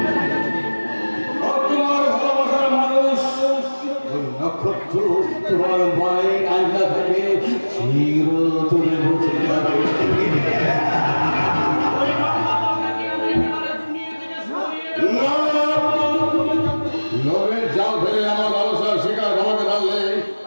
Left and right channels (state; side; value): inverted; both; correlation -1.00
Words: আর তোমার ভালোবাসার মানুষ ওই নক্ষত্র তোমার মায়ের আয়না থেকে চিরতরে বসে যাবে। লোভের জাল ফেলে আমার ভালোবাসার শিকার আমাকে ধরলে